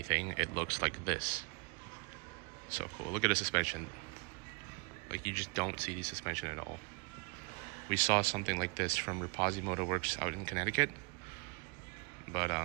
it looks like this. So cool. Look at the suspension. Like, you just don't see the suspension at all. We saw something like this from Rapazzi Motor Works out in Connecticut. But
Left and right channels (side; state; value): left; quieter; 33.1 dB